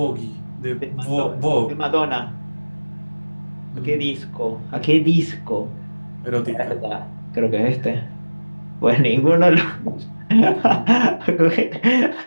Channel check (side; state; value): both; inverted; correlation -1.00